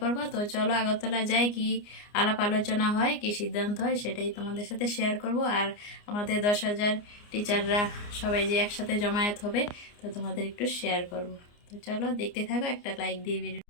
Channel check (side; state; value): right; late; 29 ms